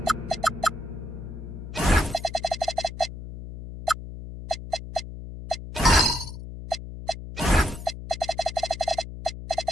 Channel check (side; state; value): left; noise; hum, 10 dB below the sound